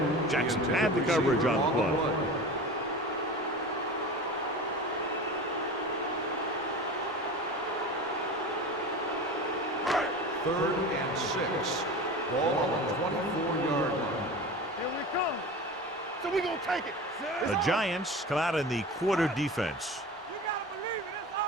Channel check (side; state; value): both; normal; correlation 0.32